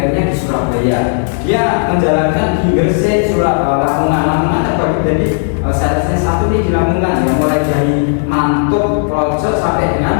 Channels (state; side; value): silent; right; digital silence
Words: di Surabaya. Dia menjalankan di Gresik, Lamongan terbagi jadi salesnya satu nih di Lamongan, yang mulai dari Mantuk, Plojo sampai